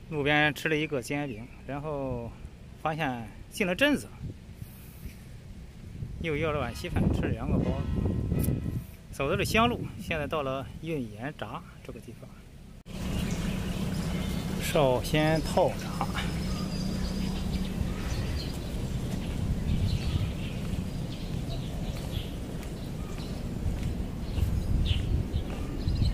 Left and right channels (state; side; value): identical; both; correlation 1.00